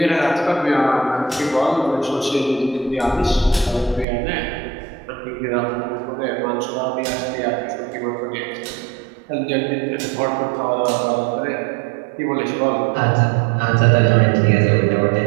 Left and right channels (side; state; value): left; drops out; at 4.0 s